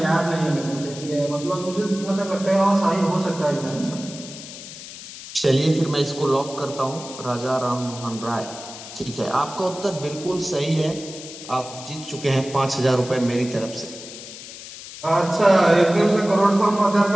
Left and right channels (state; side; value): noise; left; hiss, 13 dB below the sound